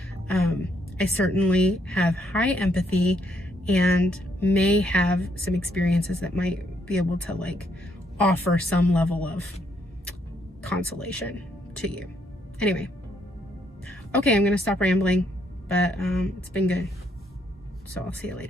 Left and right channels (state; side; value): normal; both; correlation 0.72